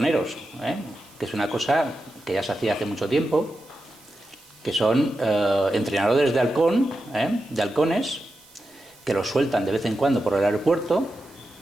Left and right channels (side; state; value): right; noise; hiss, 25 dB below the sound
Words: que es una cosa que ya se hacía hace mucho tiempo, que son entrenadores de halcones, que los sueltan de vez en cuando por el aeropuerto